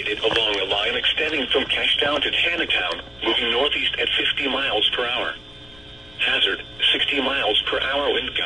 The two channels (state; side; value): noise; left; rumble, 22 dB below the sound